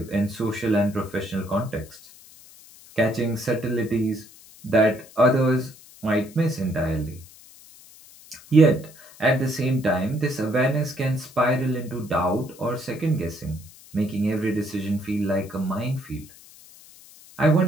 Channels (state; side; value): noise; left; hiss, 22 dB below the sound